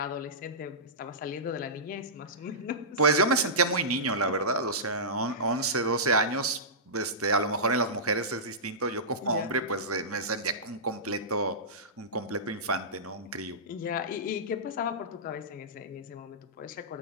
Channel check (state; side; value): normal; both; correlation -0.17